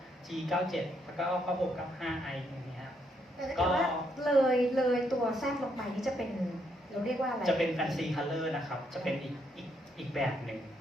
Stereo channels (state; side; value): normal; both; correlation 0.75